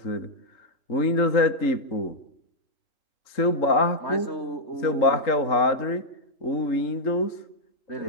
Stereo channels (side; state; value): right; late; 3.7 ms